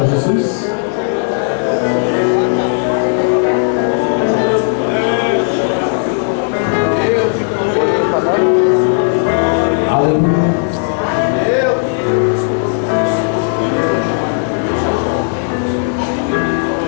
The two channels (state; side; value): silent; right; 70 dB below the other